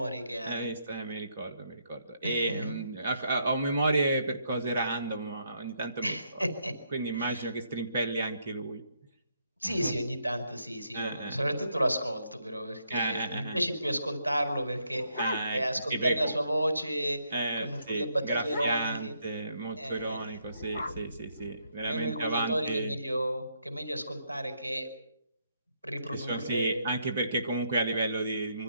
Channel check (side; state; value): both; inverted; correlation -0.75